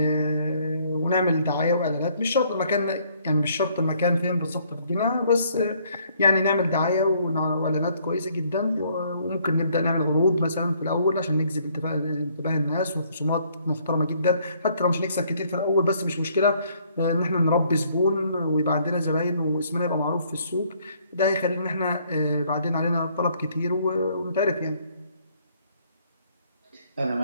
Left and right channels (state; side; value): inverted; both; correlation -0.65